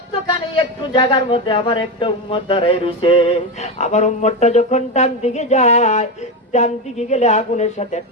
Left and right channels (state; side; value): normal; both; correlation 0.14